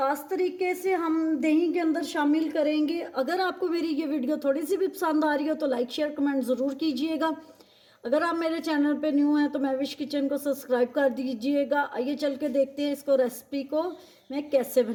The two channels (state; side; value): identical; both; correlation 1.00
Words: तरीके से हम दही के अंदर शामिल करेंगे। अगर आपको मेरी ये वीडियो थोड़ी सी भी पसंद आ रही हो तो लाइक शेयर कमेंट ज़रूर कीजिएगा। अगर आप मेरे चैनल पे न्यू हैं तो मैविश किचन को सब्सक्राइब कर दीजिएगा। आइए चल के देखते हैं इसको, रेसिपी को मैं कैसे